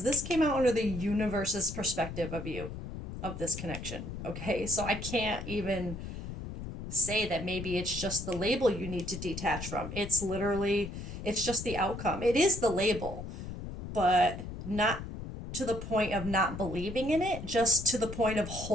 this came out under the universe's perspective of you, of this connection. Okay, so I can't even say that maybe it's just the label you need to detach from. It's just the outcome. It is the label, but not to the point of not believing in it, just to the point of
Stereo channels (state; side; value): noise; left; rumble, 8 dB below the sound